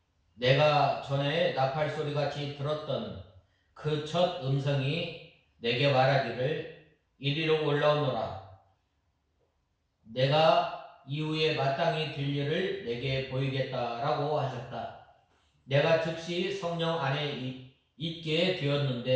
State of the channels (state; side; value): identical; both; correlation 1.00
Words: 내가 전에 나팔 소리같이 들었던 그 첫 음성이 내게 말하기를 이리로 올라오너라. 내가 이후에 마땅히 될 일을 내게 보이겠다라고 하셨다. 내가 즉시 성령 안에 있게